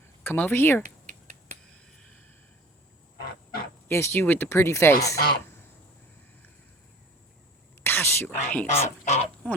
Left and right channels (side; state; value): both; normal; correlation 0.44